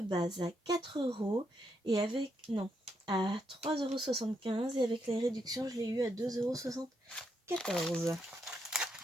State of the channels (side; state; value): both; normal; correlation 0.79